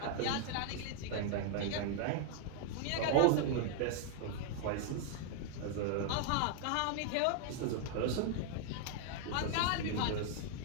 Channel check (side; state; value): both; different; correlation 0.00